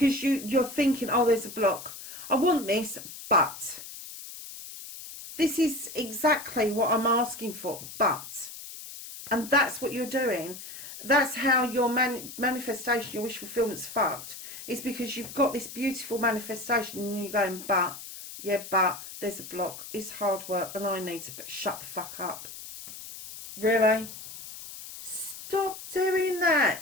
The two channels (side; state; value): left; noise; hiss, 12 dB below the sound